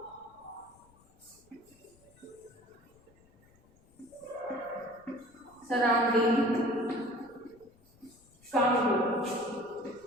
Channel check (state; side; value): noise; left; rumble, 29 dB below the sound